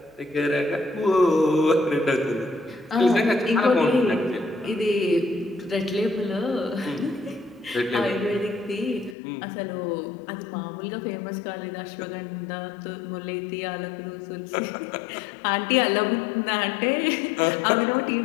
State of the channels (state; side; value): drops out; right; at 9.2 s